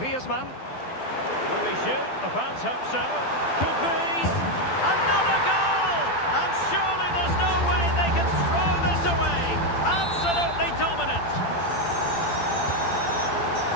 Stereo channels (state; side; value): late; right; 12 ms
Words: Will he shoot? The fans hope so. Could be. Another goal! And surely there's no way they can throw this away. Absolutely dominant.